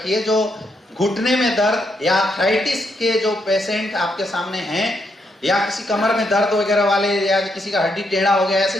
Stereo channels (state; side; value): normal; both; correlation 0.78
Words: जो घुटने में दर्द या आर्थराइटिस के जो पेशेंट आपके सामने हैं, या किसी कमर में दर्द वगैरह वाले, या किसी का हड्डी टेढ़ा हो गया,